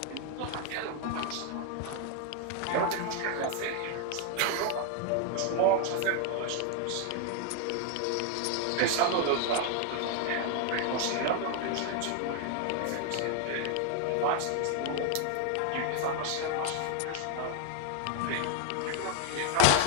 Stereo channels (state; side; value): different; both; correlation 0.00